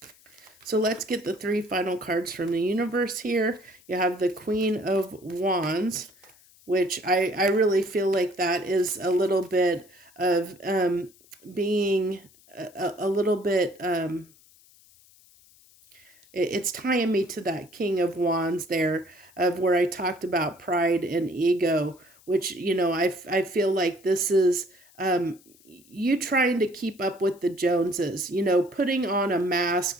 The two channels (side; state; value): left; noise; hiss, 28 dB below the sound